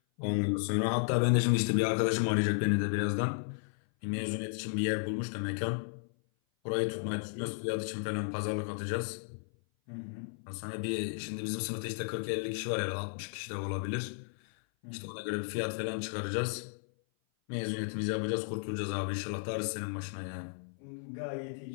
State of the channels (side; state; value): right; silent; 55 dB below the other